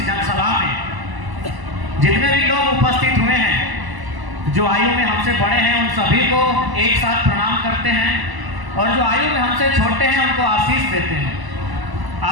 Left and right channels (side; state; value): left; late; 1.0 ms